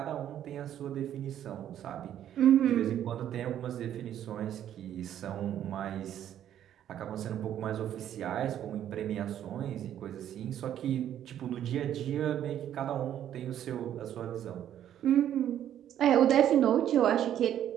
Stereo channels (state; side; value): quieter; left; 10.8 dB